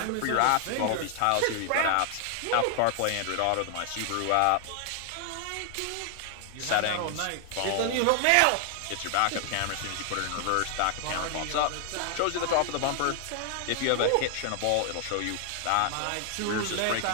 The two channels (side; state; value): both; different; correlation 0.00